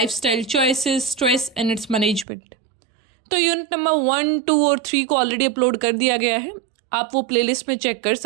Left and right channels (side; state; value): left; drops out; at 2.2 s